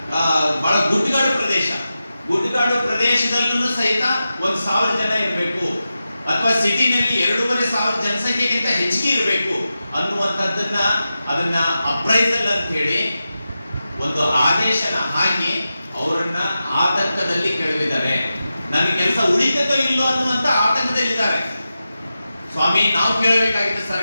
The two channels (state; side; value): inverted; both; correlation -0.92